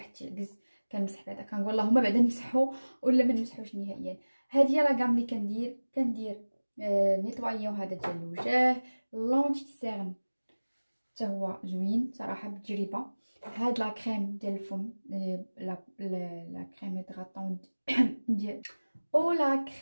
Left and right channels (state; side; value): inverted; both; correlation -1.00